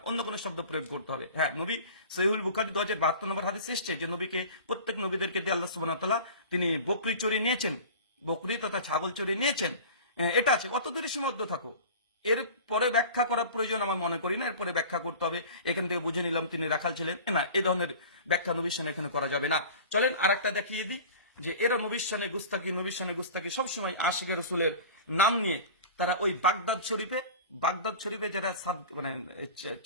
অন্য কোনো শব্দ প্রয়োগ করতে হবে। হ্যাঁ, নবী সহিহুল বুখারী 2072 নম্বর হাদিস এসেছে যে নবীকে, প্রত্যেক নবীদেরকে দিয়ে আল্লাহ সুবহানাহু ওয়া তাআলা তিনি বকরি চড়িয়ে নিয়েছেন, বকরি তথা ছাগল চড়িয়ে নিয়েছেন। এটা আছে, অত দূরে সীমাবদ্ধ থাকো। এর পরে ব্যাখ্যা করার প্রয়োজন আমার মনে করি না, এরপরে ব্যাখ্যা করতে হবে এখান থেকে বুঝে নিলাম তিনি রাখাল ছিলেন, না, এই ধরনের ব্যাখ্যা নবীর শানে এখানে করা যাবে না। চলেন আর একটা দেখিয়ে দিই যে এরা নবীর শানে গুস্তাকি, নবীর শানে গুস্তাকি সবসময় আশিকে রাসূলের নাম নিয়ে তারা ওই বাগদাদ শরীফে যারা মানে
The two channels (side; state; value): both; inverted; correlation -0.38